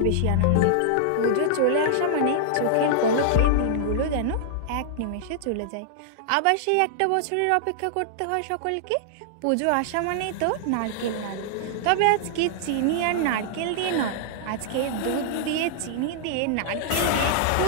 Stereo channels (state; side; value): different; both; correlation -0.01